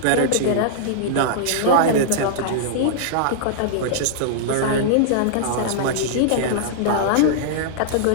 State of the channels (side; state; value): both; different; correlation -0.02